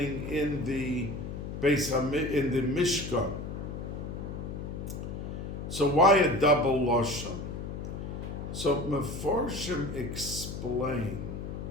in the Mishkan. So why a double lashon? So Meforshim explain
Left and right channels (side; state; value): left; noise; hum, 6 dB below the sound